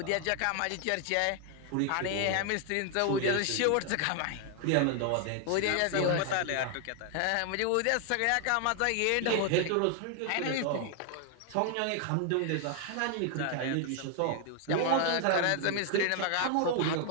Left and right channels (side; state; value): both; different; correlation 0.00